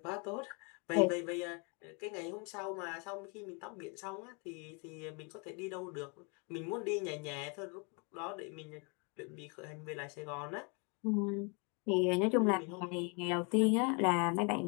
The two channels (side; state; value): right; quieter; 34.0 dB